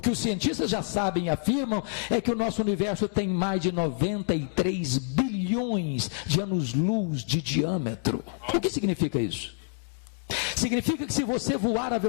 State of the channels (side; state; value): right; silent; digital silence